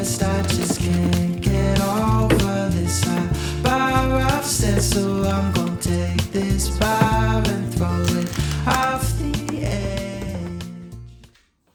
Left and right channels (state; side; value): identical; both; correlation 1.00